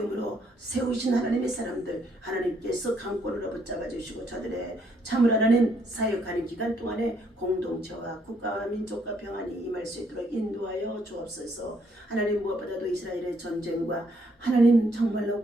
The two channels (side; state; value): both; normal; correlation 0.70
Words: 세우신 하나님의 사람들 하나님께서 강권으로 붙잡아 주시고 저들의 참으로 하나님 사역하는 기간 동안에 공동체와 국가와 민족과 평안이 임할 수 있도록 인도하여 주옵소서. 하나님 무엇보다도 이스라엘의 전쟁과 하나님 정말로